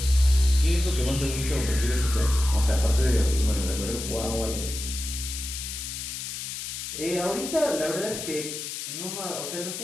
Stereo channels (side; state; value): left; noise; hiss, 6 dB below the sound